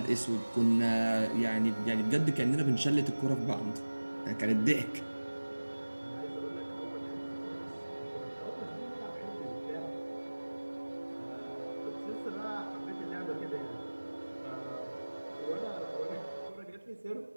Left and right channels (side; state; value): both; inverted; correlation -1.00